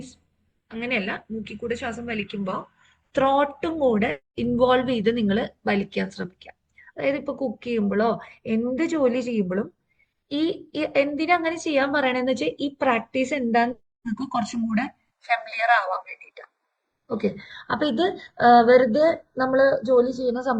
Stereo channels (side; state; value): both; identical; correlation 1.00